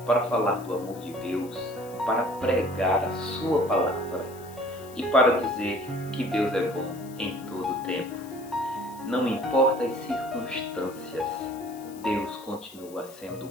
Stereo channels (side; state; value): left; noise; hiss, 21 dB below the sound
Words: para falar do amor de Deus, para pregar a sua palavra e para dizer que Deus é bom em todo o tempo. Não importa as circunstâncias, Deus continua sendo